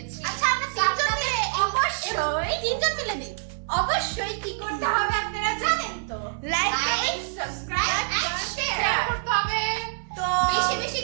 আচ্ছা আমরা তো আপনাদের অবশ্যই তিনজন মিলে দিই। অবশ্যই কি করতে হবে আপনারা জানেন তো, like like subscribe and share করতে হবে। তো বেশি বেশি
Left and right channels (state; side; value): silent; left; 61 dB below the other